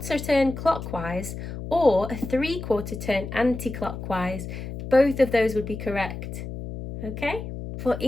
turn clockwise or a 3/4 turn anti-clockwise. Both of those would be correct. Okay? For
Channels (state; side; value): noise; left; hum, 8 dB below the sound